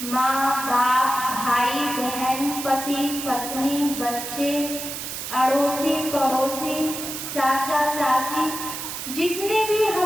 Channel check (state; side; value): noise; right; hiss, 6 dB below the sound